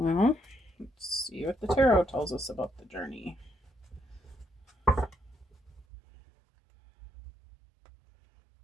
let's see what the tarot tells us about the journey.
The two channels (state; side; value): drops out; left; at 5.9 s